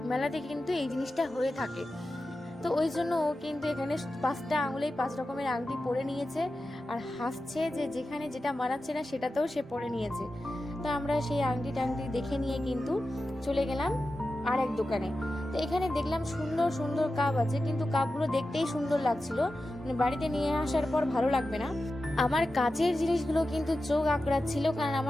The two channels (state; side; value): normal; both; correlation 0.92